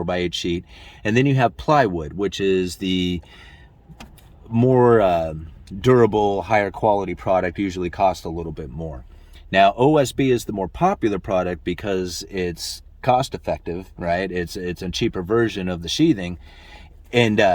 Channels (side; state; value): both; identical; correlation 1.00